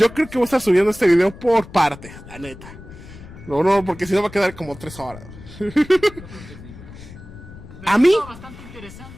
creo que voy a estar subiendo este video por partes, la neta. No, porque si no va a quedar como 3 horas. Pero A mí, estuvo bastante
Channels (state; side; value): noise; left; rumble, 17 dB below the sound